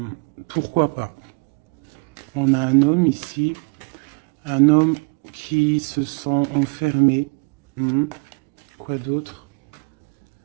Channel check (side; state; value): left; quieter; 33.6 dB